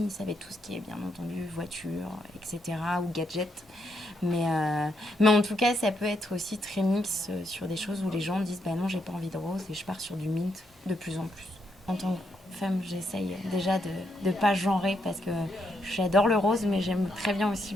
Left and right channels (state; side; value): normal; both; correlation 0.78